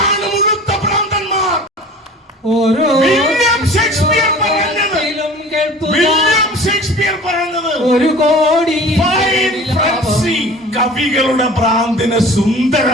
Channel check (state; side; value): normal; both; correlation 0.42